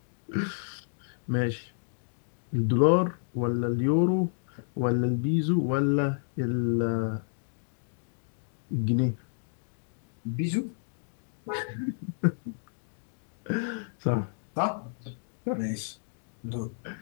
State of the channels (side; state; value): right; silent; digital silence